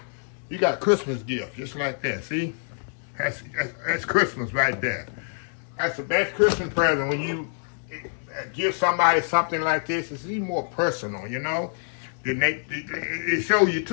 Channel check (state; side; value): silent; right; digital silence